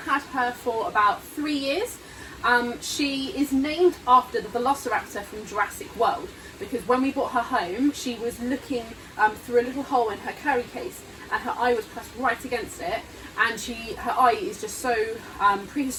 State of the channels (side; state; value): both; identical; correlation 1.00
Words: her for about 3 years. She is named after the velociraptor from Jurassic World, because when we brought her home, she was looking through a little hole in her carry case, and her eye was pressed right against it, and her eye is just so